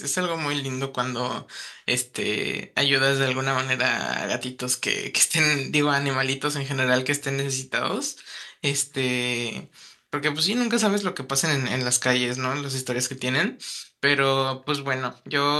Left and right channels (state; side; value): identical; both; correlation 1.00